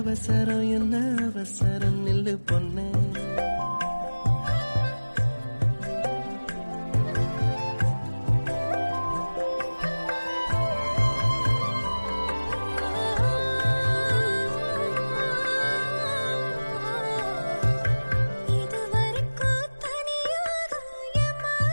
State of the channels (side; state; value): both; inverted; correlation -1.00